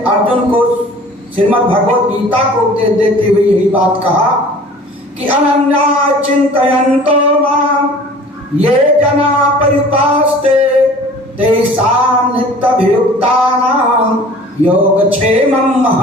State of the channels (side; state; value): both; normal; correlation 0.46